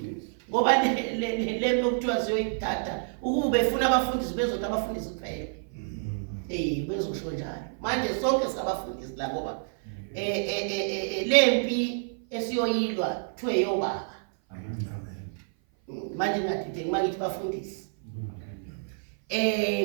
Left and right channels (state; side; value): silent; left; 56 dB below the other